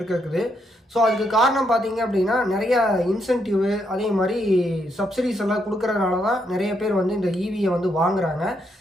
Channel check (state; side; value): normal; both; correlation 0.77